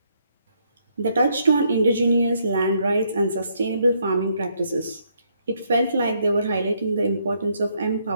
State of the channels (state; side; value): inverted; both; correlation -0.73